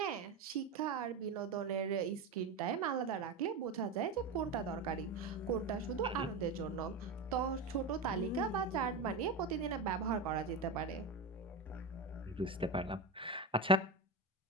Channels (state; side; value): quieter; left; 3.7 dB